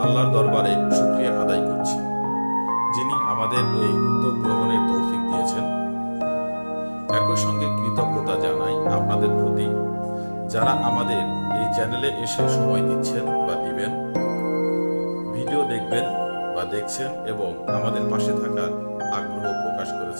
আল্লাহর দরবারে শুকরিয়া আদায় করছি, যিনি আমাদের এই উদ্যোগ গ্রহণের তৌফিক দিয়েছেন। একই সঙ্গে কৃতজ্ঞতা জানাই আপনাদের প্রতি, যারা আমাদের এই চ্যানেলে এসে সময় দিচ্ছেন বা দিবেন, ভিডিও দেখবেন বা দেখছেন এবং আমাদের পাশে থাকার আগ্রহ প্রকাশ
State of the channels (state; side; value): inverted; both; correlation -1.00